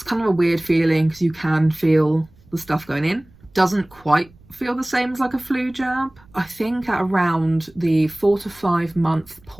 kind of a weird feeling because you can feel the stuff going in. Doesn't quite feel the same as like a flu jab. I think at around the 4 to 5 month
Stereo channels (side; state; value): right; noise; rumble, 27 dB below the sound